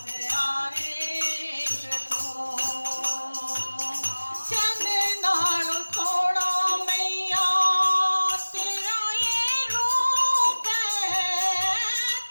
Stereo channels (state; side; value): inverted; both; correlation -1.00